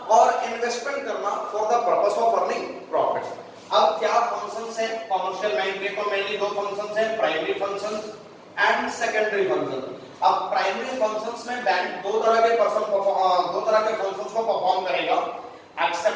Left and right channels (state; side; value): identical; both; correlation 1.00